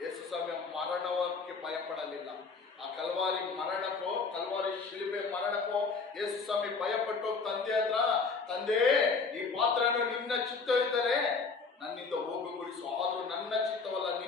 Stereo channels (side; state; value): right; quieter; 4.6 dB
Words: ಯೇಸು ಸ್ವಾಮಿ ಮರಣಕ್ಕೆ ಭಯಪಡಲಿಲ್ಲ. ಆ ಕಲ್ವಾರಿ ಮರಣಕ್ಕೋ, ಕಲ್ವಾರಿ ಶಿಲುಬೆ ಮರಣಕ್ಕೋ ಯೇಸು ಸ್ವಾಮಿ ಭಯಪಟ್ಟು ತಂದೆ ಹತ್ರ, ತಂದೆ ಈ ಪಾತ್ರವನ್ನು ನಿನ್ನ ಚಿತ್ತವಿದ್ದರೆ ನನ್ನಿಂದ ಹೋಗುಗೊಳಿಸು, ಆದ್ರೂ ನನ್ನ ಚಿತ್ತವಲ್ಲ